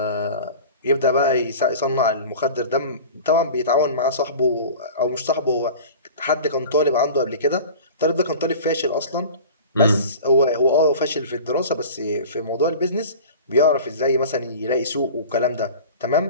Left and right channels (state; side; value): inverted; both; correlation -0.38